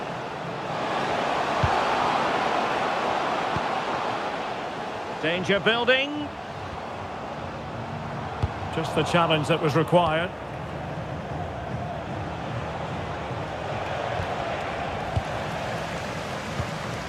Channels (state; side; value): identical; both; correlation 1.00